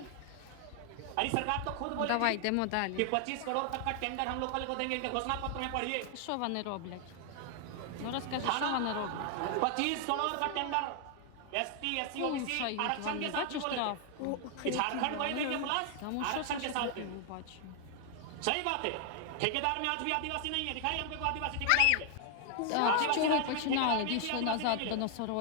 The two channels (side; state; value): both; different; correlation 0.00